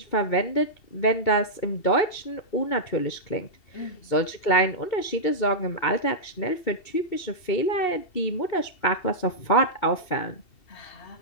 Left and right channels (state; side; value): late; right; 2.7 ms